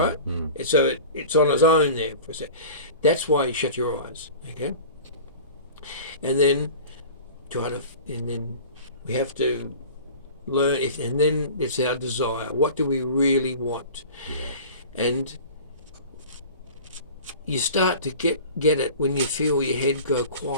So it's on its own there for a sec. That's why you shut your eyes, okay? And then we have to learn, and then it's our desire. What do we really want? Yeah. And you start to get it when you feel your head go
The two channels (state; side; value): inverted; both; correlation -0.38